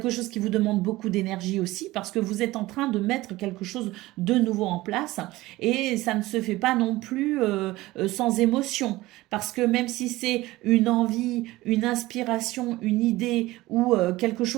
chose qui vous demande beaucoup d'énergie aussi, parce que vous êtes en train de mettre quelque chose de nouveau en place, et ça ne se fait pas non plus sans émotion, parce que même si c'est une envie, une inspiration, une idée ou quelque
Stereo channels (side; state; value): left; quieter; 18.6 dB